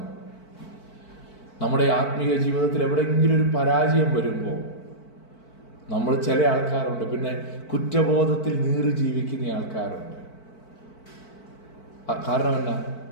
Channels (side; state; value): right; late; 4.5 ms